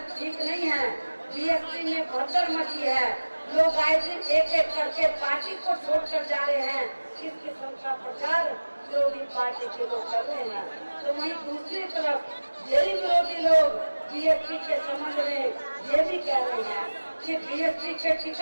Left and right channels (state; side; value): inverted; both; correlation -1.00